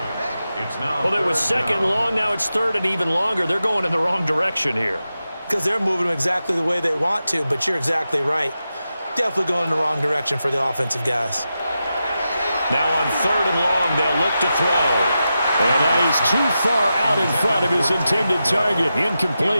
Well, it was 2nd and long. Now it's 3rd and even longer. They're going in the wrong direction here. Because they're moving them exactly the way they want to, but you're exactly right. Definitely going in the wrong direction for the offensive guys. Now on 3rd and long, they'll look to throw. And that is too far out in front of his intended target.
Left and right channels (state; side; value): inverted; both; correlation -0.90